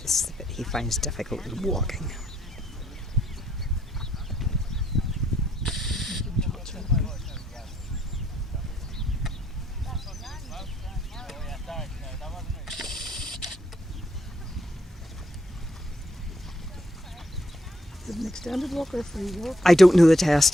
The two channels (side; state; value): both; normal; correlation 0.72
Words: This is the bit he finds difficult with walking. Is it an extended walk or a free walk? I don't know the test,